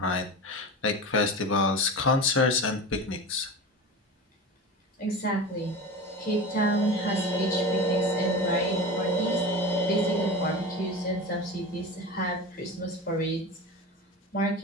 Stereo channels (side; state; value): both; normal; correlation 0.29